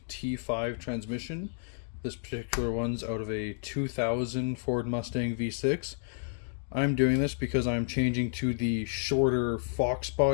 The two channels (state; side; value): silent; right; digital silence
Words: T5 transmission. This particular one's out of a 2000 Ford Mustang V6. I'm doing this because I'm changing to the shorter